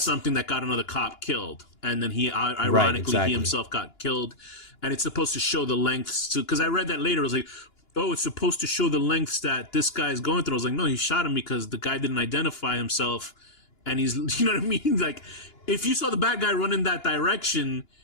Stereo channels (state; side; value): late; right; 2.9 ms